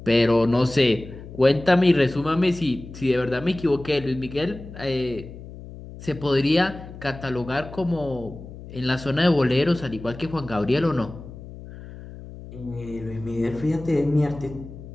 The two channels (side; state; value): left; noise; hum, 14 dB below the sound